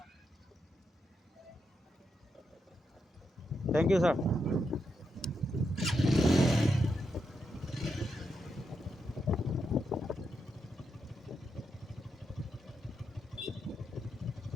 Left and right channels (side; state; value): both; normal; correlation 0.84